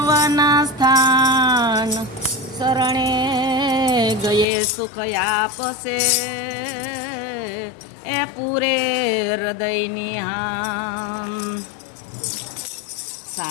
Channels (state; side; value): drops out; right; at 4.5 s